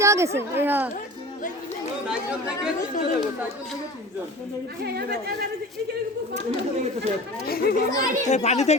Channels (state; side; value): normal; both; correlation 0.37